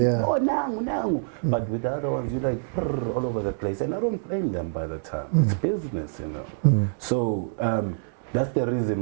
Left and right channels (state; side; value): silent; left; 61 dB below the other